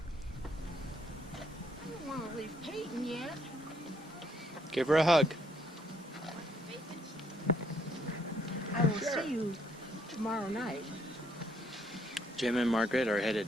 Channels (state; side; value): normal; both; correlation 0.69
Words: don't want to leave Peyton yet. Give her a hug. I will see you tomorrow night. Jim and Margaret are